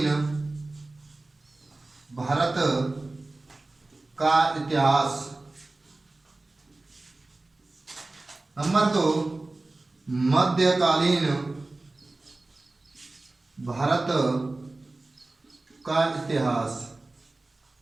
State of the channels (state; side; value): quieter; left; 3.1 dB